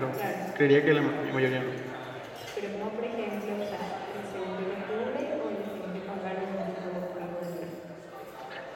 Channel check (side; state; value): both; identical; correlation 1.00